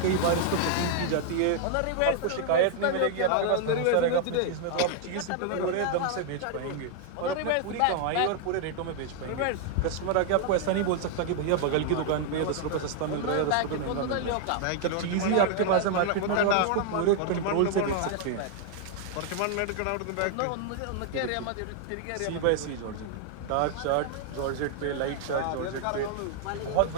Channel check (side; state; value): both; different; correlation 0.00